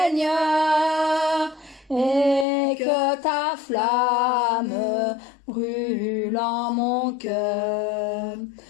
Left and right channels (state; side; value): drops out; right; at 2.5 s